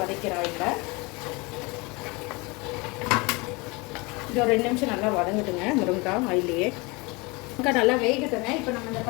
ஆயிலில். இது ஒரு 2 நிமிஷம் நல்லா வதங்கட்டுங்க. முருங்காய் ஆயிலையே முருங்காய் நல்லா வேகட்டுங்க. இப்போ நம்ம இந்த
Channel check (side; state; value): right; quieter; 26.6 dB